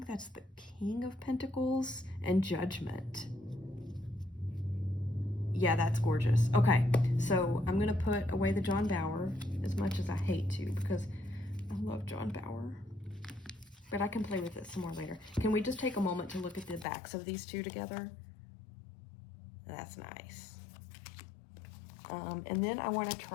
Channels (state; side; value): drops out; right; at 16.9 s